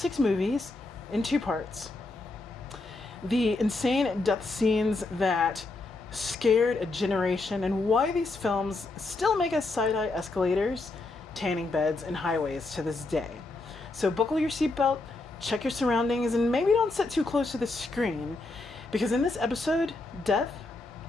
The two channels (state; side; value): quieter; right; 3.2 dB